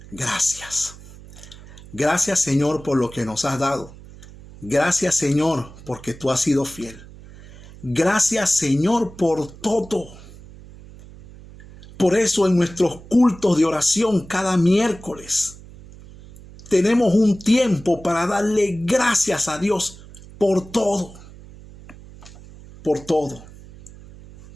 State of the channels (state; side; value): noise; right; hum, 19 dB below the sound